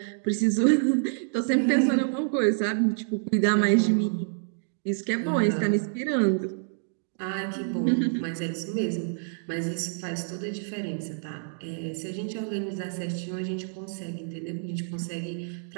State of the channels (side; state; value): left; silent; digital silence